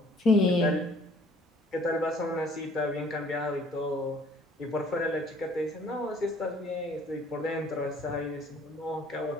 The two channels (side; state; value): both; normal; correlation 0.57